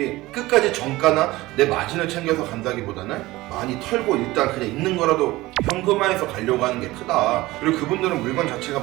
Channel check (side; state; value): left; quieter; 18.9 dB